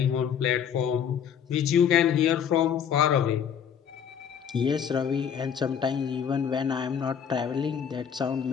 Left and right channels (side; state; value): right; quieter; 8.0 dB